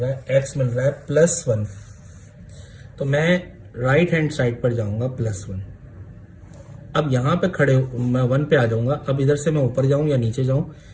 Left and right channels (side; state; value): both; identical; correlation 1.00